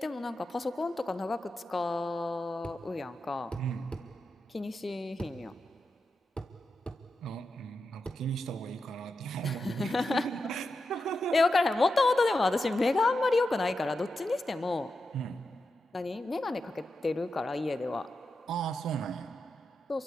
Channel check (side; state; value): both; normal; correlation 0.89